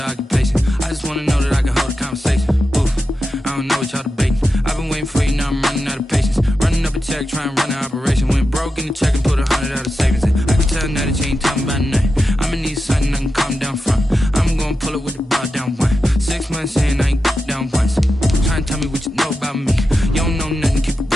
occupation. I just wanna know that I can hold a conversation. Oof, I don't know what y'all debating. I've been waiting for you, now I'm running out of patience. Running up a check, trying to run an operation. Went broke in the check and put 100 out of savings in. I can tell now that you ain't talking about nothing. I'ma need something I can calm down front. I'm gonna pull it with the bar down one. 6 months in, I ain't down once. Trying to tell me what you know about me. You don't know nothing, keep it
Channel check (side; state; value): both; normal; correlation 0.90